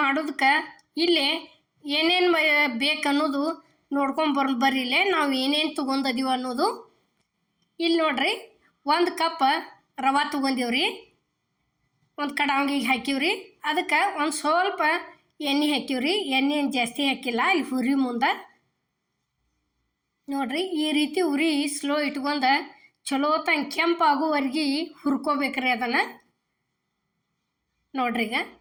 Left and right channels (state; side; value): identical; both; correlation 1.00